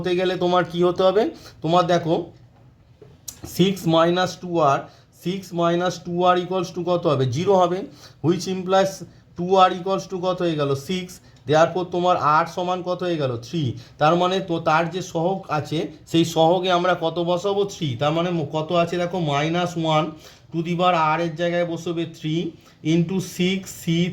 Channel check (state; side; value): identical; both; correlation 1.00